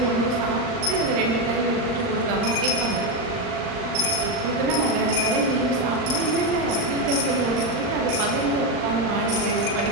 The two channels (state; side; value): late; left; 39 ms